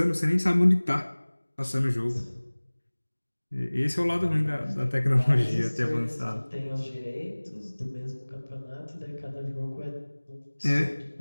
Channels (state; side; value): inverted; both; correlation -1.00